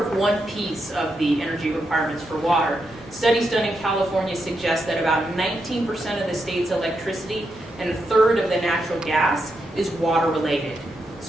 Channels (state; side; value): normal; both; correlation 0.84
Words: of one piece of the energy requirements for water. Studies done in California suggest that about 19% of the state's electricity and a third of the natural gas is water related.